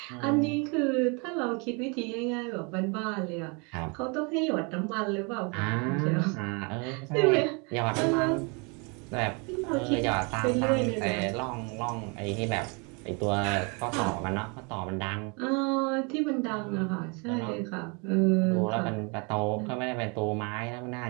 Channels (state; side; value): quieter; left; 32.2 dB